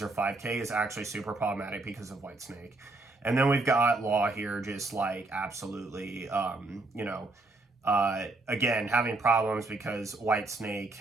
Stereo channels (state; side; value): quieter; left; 3.1 dB